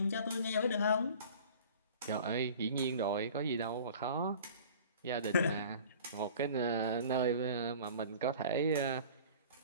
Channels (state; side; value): inverted; both; correlation -0.44